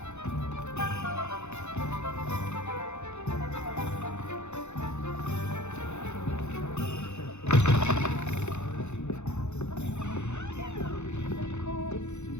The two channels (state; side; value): late; right; 0.82 ms